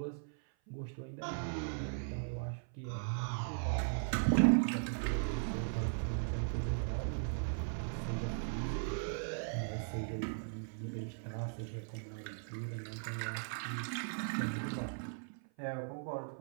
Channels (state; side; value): silent; left; 52 dB below the other